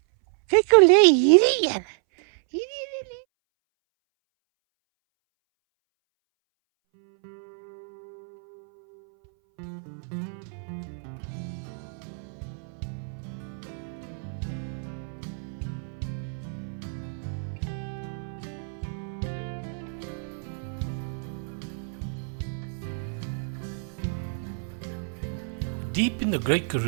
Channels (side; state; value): left; silent; 59 dB below the other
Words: kyk hoe lê hierdie een. Deep in the Great